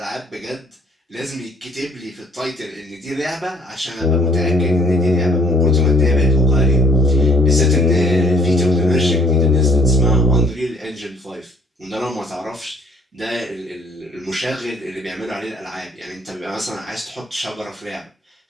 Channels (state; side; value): normal; both; correlation 0.60